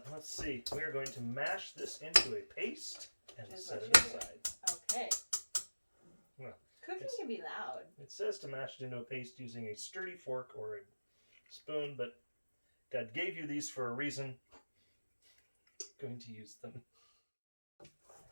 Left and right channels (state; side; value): inverted; both; correlation -1.00